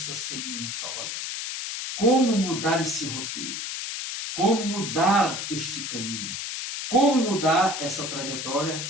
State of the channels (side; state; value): left; noise; hiss, 5 dB below the sound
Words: sem nenhum salvador. Como mudar esse roteiro? Como mudar este caminho? Como mudar essa